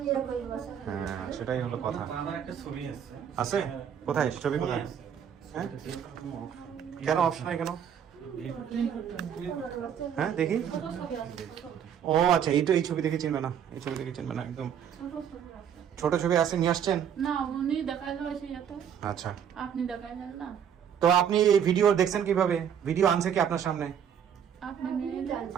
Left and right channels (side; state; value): left; quieter; 8.6 dB